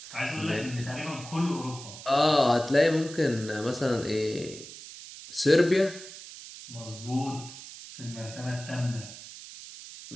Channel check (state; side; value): noise; right; hiss, 14 dB below the sound